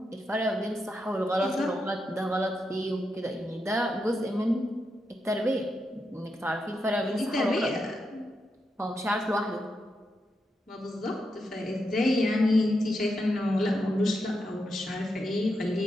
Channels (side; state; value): both; normal; correlation 0.85